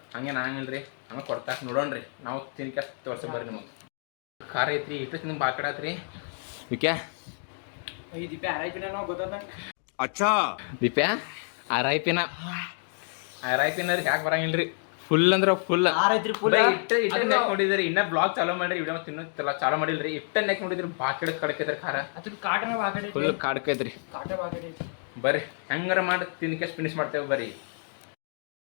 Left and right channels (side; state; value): right; silent; 56 dB below the other